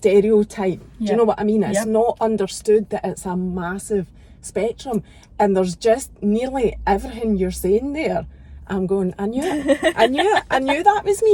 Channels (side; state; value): both; identical; correlation 1.00